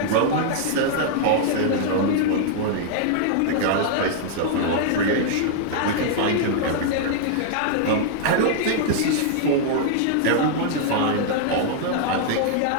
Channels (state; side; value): different; both; correlation -0.01